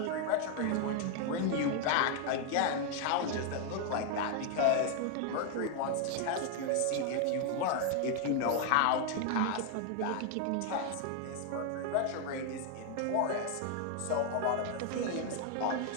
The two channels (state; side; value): different; both; correlation 0.01